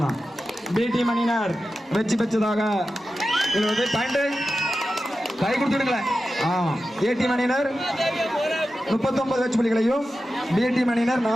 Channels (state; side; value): normal; both; correlation 0.92